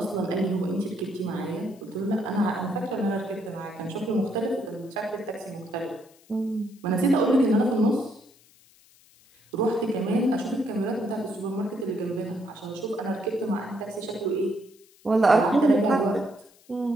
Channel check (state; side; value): noise; left; hiss, 28 dB below the sound